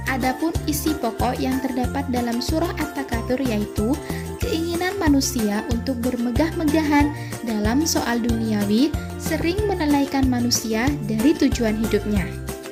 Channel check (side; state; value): both; identical; correlation 1.00